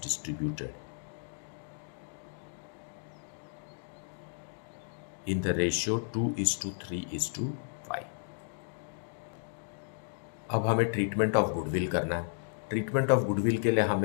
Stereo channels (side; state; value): right; silent; digital silence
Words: distributed in the ratio 2:3:5। अब हमें ट्रीटमेंट ऑफ गुडविल करना है। ट्रीटमेंट ऑफ गुडविल के लिए